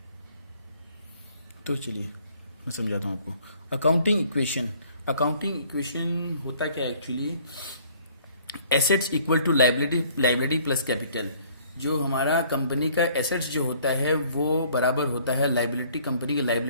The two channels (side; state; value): both; inverted; correlation -0.58